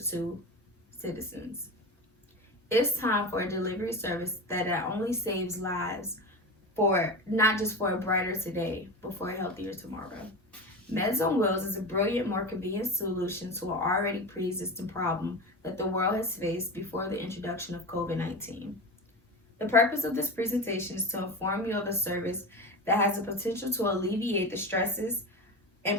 to citizens? It's time for a delivery service that not only saves lives for not just for a brighter today, but for a healthier tomorrow. Meds on Wheels is a brilliant, more convenient solution to an already pre existing problem that the world has faced before the introduction of COVID 19. The purpose of this presentation is to inform you of a service that has the potential to alleviate the stresses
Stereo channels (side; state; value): both; normal; correlation 0.25